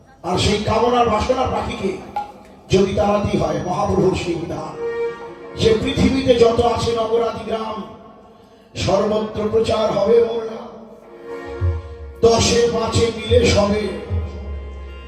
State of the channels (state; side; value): identical; both; correlation 1.00